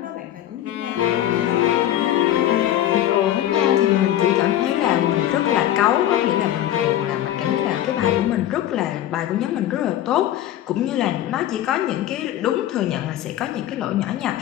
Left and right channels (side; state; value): right; quieter; 12.3 dB